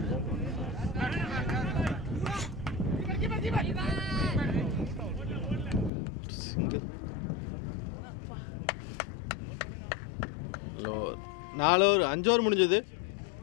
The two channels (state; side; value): drops out; right; at 5.9 s